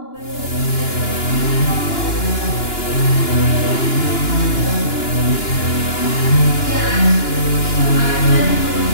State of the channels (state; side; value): late; right; 2.9 ms